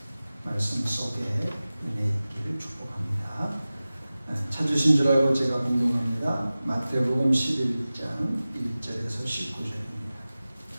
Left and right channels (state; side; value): inverted; both; correlation -0.97